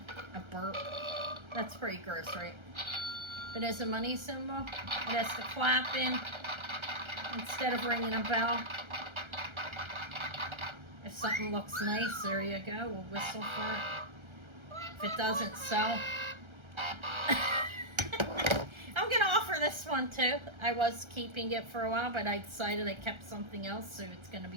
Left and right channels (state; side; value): late; left; 1.3 ms